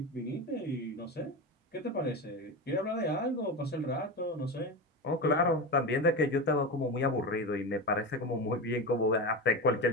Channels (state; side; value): normal; both; correlation 0.21